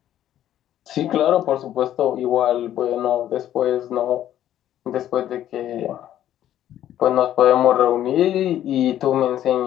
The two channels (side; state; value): right; quieter; 11.8 dB